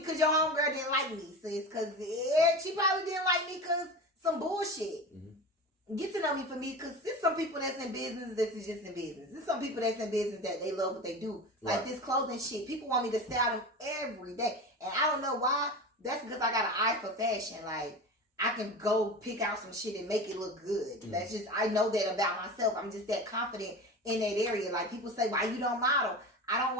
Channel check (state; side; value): normal; both; correlation 0.29